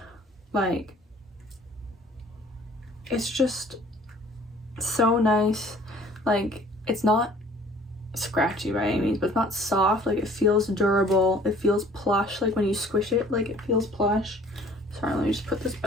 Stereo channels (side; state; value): both; normal; correlation 0.53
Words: Like, it's just so nice. Like, it's not scratchy by any means, but it's not soft. Like, it feels durable. It feels plush. Like when you squish it, like it feels plush. Sorry, let me just put this